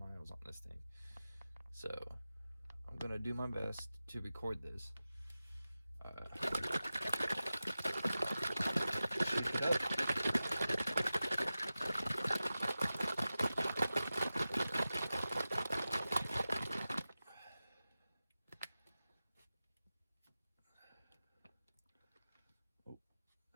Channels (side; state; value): both; inverted; correlation -0.95